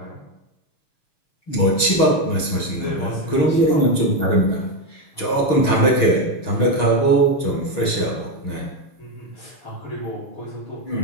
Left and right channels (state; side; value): late; right; 6.5 ms